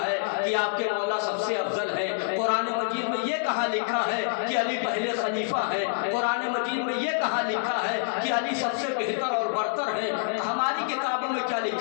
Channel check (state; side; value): silent; right; digital silence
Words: ہے کہ آپ کے مولا سب سے افضل ہے؟ قرآن مجید میں یہ کہاں لکھا ہے کہ علی پہلے خلیفہ ہے؟ قرآن مجید میں یہ کہاں لکھا ہے کہ علی سب سے بہتر اور برتر ہے؟ ہماری کتابوں میں کیا